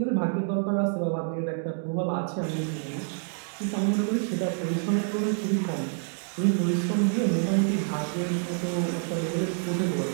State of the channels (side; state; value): left; silent; 60 dB below the other